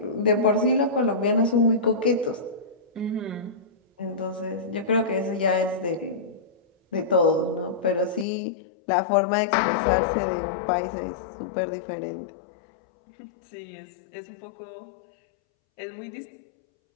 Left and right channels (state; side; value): drops out; right; at 8.2 s